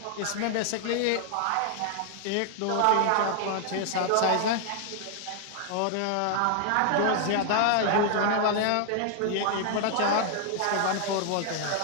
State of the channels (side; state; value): both; different; correlation 0.00